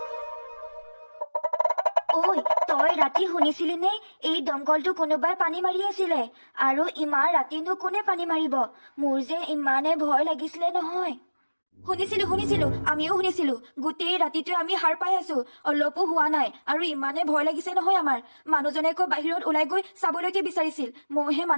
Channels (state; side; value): inverted; both; correlation -1.00